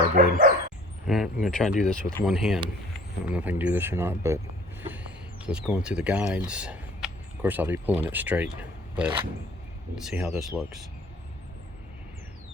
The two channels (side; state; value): both; normal; correlation 0.51